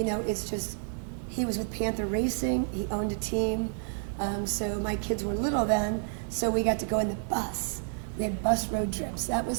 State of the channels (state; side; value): silent; left; digital silence